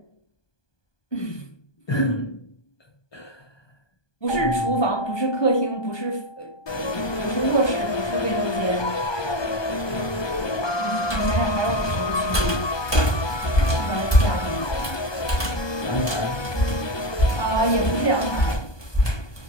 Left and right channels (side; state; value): right; late; 1.2 ms